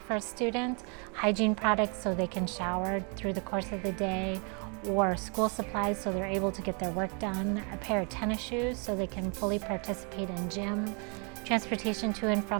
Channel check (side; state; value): left; quieter; 35.4 dB